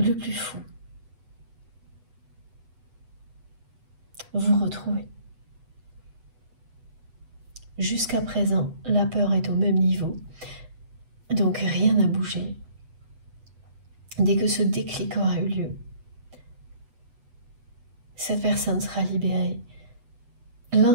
plus fou. Vous retrouvez. Jusqu'à présent, la peur est au même niveau, donc rien n'a bougé. Dès que ce déclic aura eu lieu, cette personne sera libérée.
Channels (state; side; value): late; left; 8.1 ms